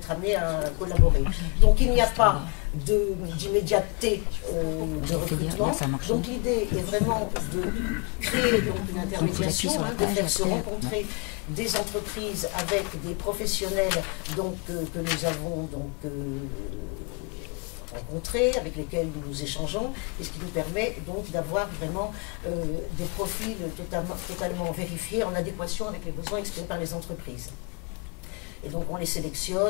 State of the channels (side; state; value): right; quieter; 32.5 dB